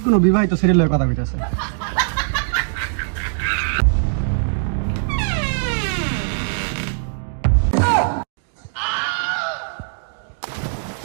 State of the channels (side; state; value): left; silent; digital silence